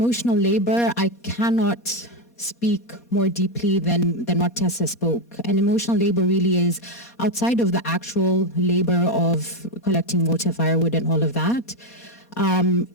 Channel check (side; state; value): right; late; 4.2 ms